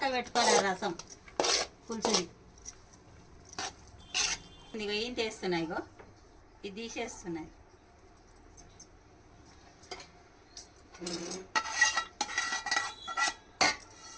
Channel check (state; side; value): identical; both; correlation 1.00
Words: పెట్టుకోవాలి రసం పులుసుది. ఇగో ఏం చేస్తున్నాయి, ఇగో ఇది తీసేస్తున్నాయి.